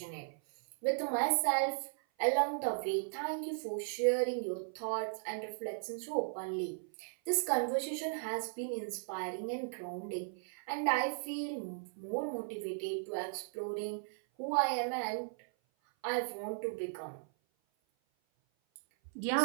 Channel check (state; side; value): silent; left; 53 dB below the other